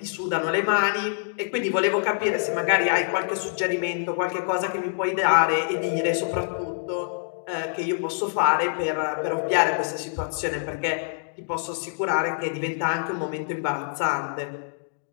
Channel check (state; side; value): silent; right; digital silence